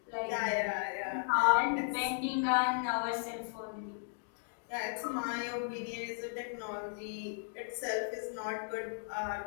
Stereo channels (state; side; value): silent; right; digital silence